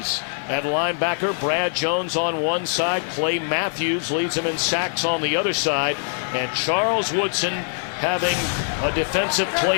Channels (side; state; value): right; silent; digital silence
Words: at linebacker. Brad Jones on one side. Clay Matthews leads him in sacks on the other side. And Charles Woodson having a Defensive